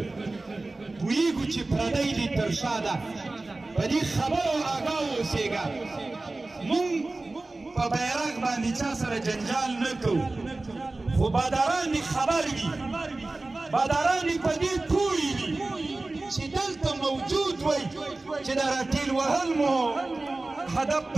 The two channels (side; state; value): left; quieter; 3.1 dB